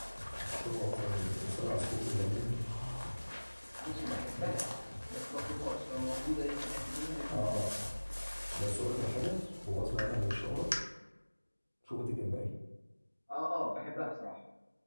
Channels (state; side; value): inverted; both; correlation -1.00